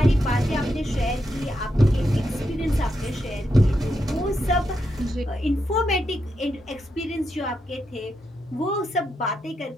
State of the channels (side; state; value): both; normal; correlation 0.83